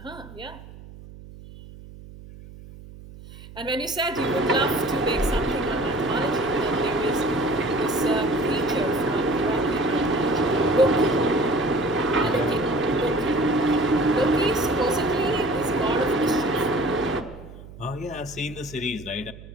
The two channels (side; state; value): right; noise; hum, 17 dB below the sound